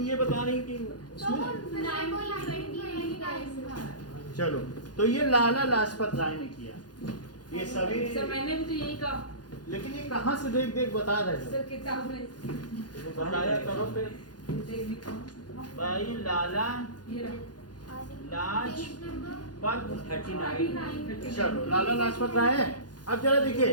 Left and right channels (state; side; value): late; right; 0.69 ms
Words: ये बता रही कि इसमें, चलो, तो ये लाला लाजपत राय ने किया, ये सभी, सर मैंने भी तो यही कहा लेकिन ये कहाँ से देख देख बता रहे सर, थे, किताब में तो बताया करो फिर, देख भी कहा। भाई लाला ये रहा। लाजपत, 39 चलो लाला लाजपत राय है। अब जरा